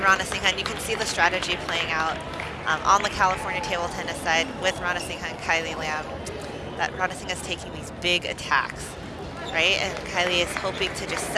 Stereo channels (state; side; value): identical; both; correlation 1.00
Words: and you can see the strategy playing out on the California table tennis side with Ranasinghe and Kylie Lam, that Ranasinghe is taking these big attacks, right? And Kylie is hoping to just